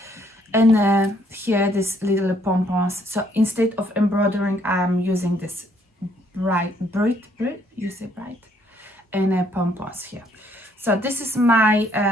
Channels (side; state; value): both; normal; correlation 0.67